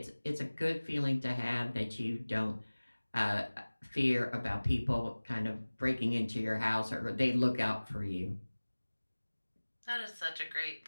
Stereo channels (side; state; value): both; inverted; correlation -1.00